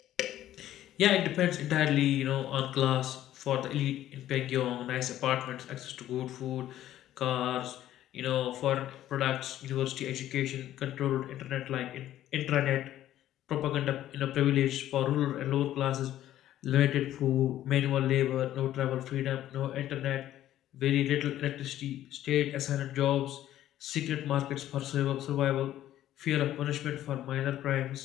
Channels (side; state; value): right; quieter; 12.8 dB